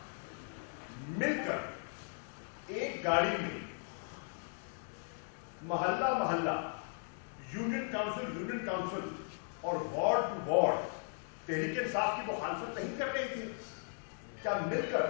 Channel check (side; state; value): right; silent; 53 dB below the other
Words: मिलकर एक गाड़ी में मोहल्ला मोहल्ला, यूनियन काउंसिल और ward to ward Tehreek Insaf की मुखालफत नहीं कर रहे थे? क्या मिलकर